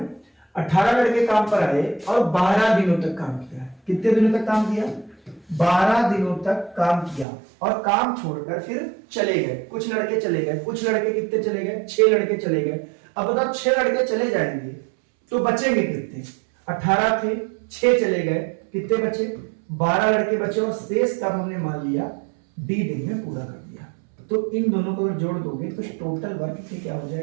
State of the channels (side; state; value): left; drops out; at 7.2 s